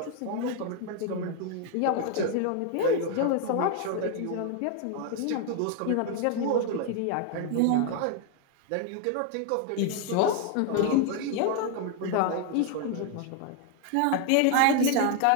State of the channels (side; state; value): both; different; correlation 0.00